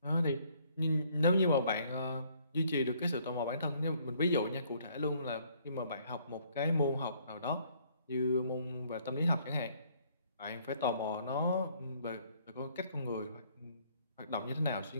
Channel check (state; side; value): inverted; both; correlation -0.63